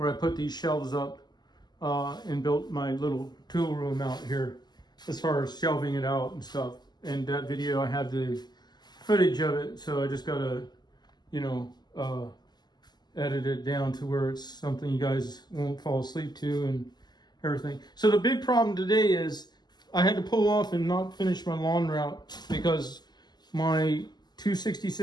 I put these shelves up and built my little tool room out here as far as shelving it out and stuff. And that video, I have the footage of it, so I just got to, edit it down to where it's something you guys won't fall asleep to and everything. So the big problem today is I had to pull off and not finish my lawn route because my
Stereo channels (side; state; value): right; late; 0.21 ms